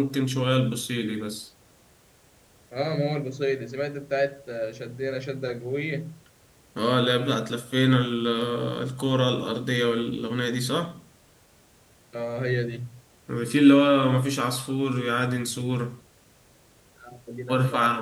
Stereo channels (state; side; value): identical; both; correlation 1.00